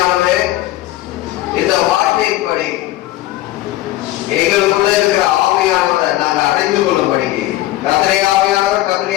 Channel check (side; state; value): right; quieter; 15.8 dB